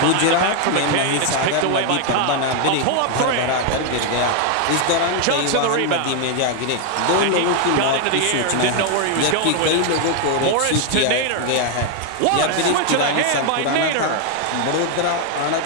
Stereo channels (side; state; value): both; different; correlation 0.00